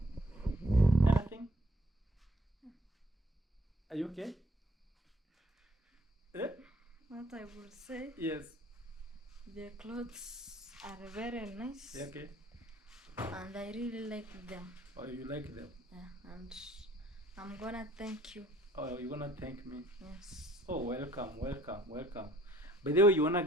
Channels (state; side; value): normal; both; correlation 0.60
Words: Anything? Are you okay? Eh? What I will say, Yes. the clothes are very nice. Yeah, okay. And I really like them. Oh, you like them? Yeah, and I'm gonna thank you. Oh, you're gonna thank me? Yes. Oh, welcome. By the way, you wanna